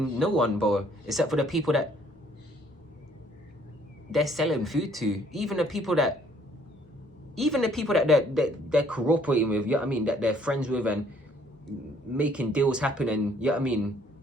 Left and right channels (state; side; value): normal; both; correlation 0.62